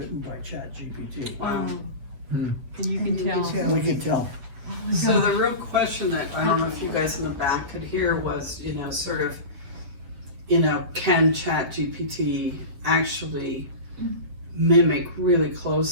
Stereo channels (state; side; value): late; left; 7.8 ms